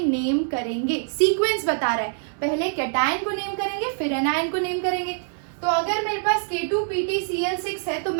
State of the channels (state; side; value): silent; left; 62 dB below the other